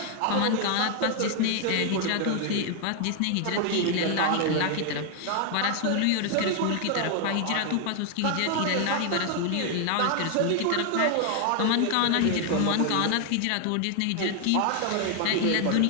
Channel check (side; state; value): both; different; correlation 0.00